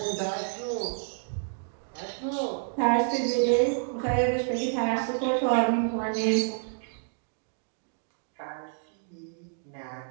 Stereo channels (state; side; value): silent; left; digital silence